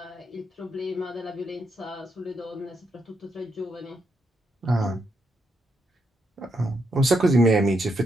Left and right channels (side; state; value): both; normal; correlation 0.80